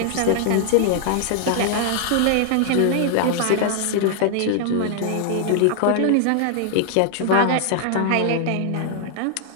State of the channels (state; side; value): different; both; correlation -0.01